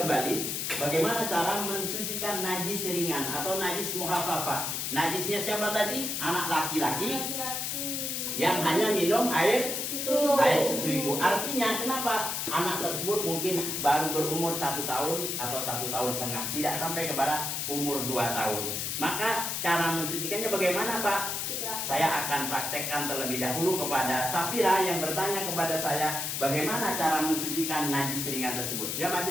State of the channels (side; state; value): left; noise; hiss, 2 dB below the sound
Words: bagaimana cara mensucikan najis ringan atau najis mukhafafah. Najisnya siapa tadi? Anak laki-laki yang hanya minum air susu ibu. Artinya kenapa anak tersebut mungkin baru berumur 1 tahun atau 1,5 tahun, tidak sampai kepada umur 2 tahun. Maka cara mensucikannya bagaimana, Pak? Saya akan praktekkan terlebih dahulu kepada Safira yang bertanya kepada saya bagaimana cara mensucikan najis ringan tersebut. Ya, maju